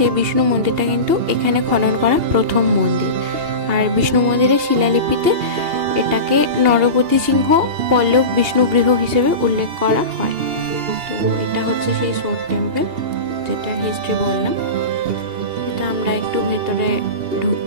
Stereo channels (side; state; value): left; late; 2.8 ms